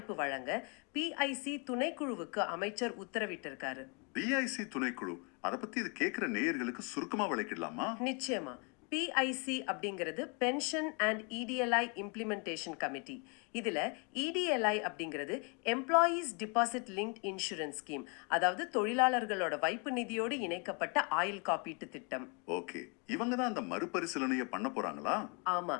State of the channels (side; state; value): right; quieter; 34.5 dB